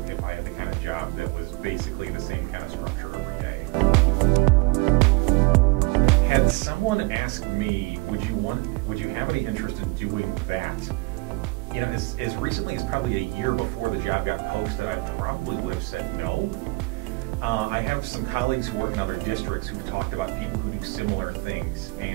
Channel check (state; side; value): quieter; left; 24.8 dB